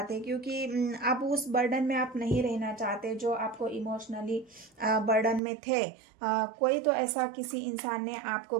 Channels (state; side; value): drops out; left; at 5.4 s